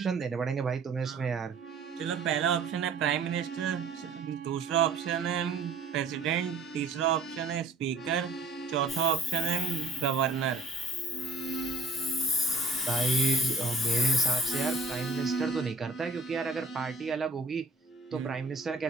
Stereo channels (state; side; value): quieter; left; 3.7 dB